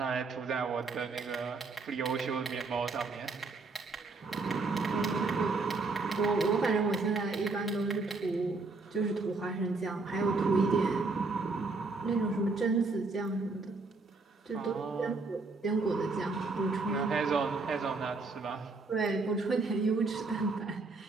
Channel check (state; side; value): quieter; left; 3.8 dB